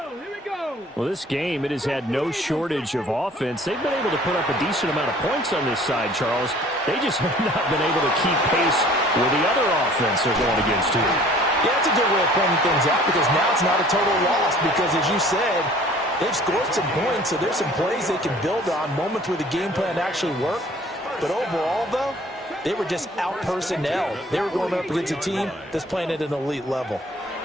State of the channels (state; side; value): normal; both; correlation 0.52